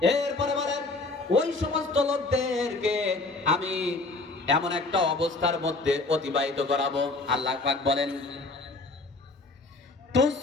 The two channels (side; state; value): right; quieter; 3.3 dB